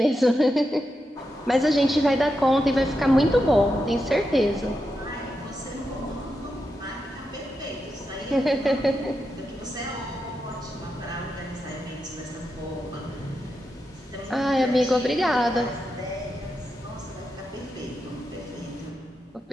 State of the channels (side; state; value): both; normal; correlation 0.87